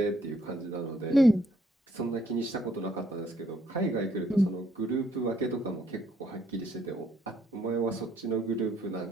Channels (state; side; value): normal; both; correlation 0.68